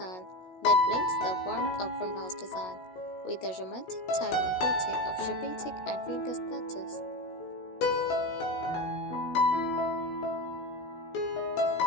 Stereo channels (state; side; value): late; right; 16 ms